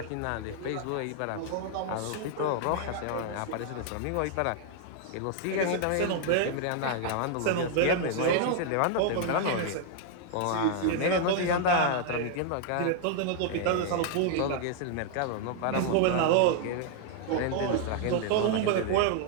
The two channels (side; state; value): both; different; correlation 0.00